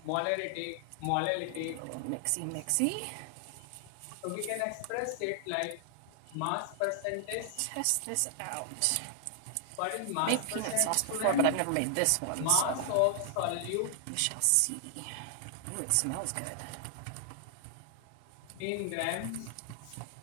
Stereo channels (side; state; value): both; different; correlation 0.00